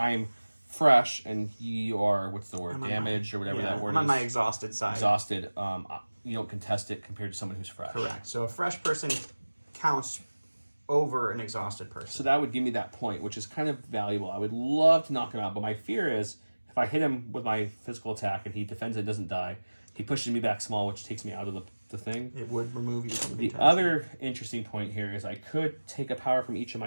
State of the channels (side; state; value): both; inverted; correlation -1.00